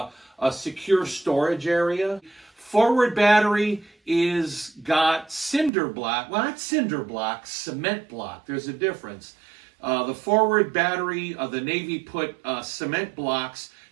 a secure storage area. Forward battery is got cinder block. Well, not cinder block, cement block. There's a difference. The forward battery, the Navy put cement blocks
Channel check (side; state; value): left; drops out; at 5.7 s